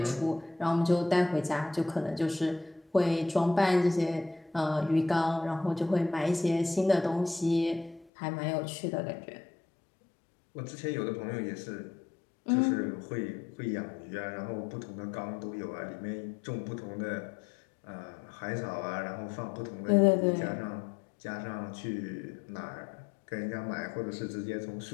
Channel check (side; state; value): right; drops out; at 8.1 s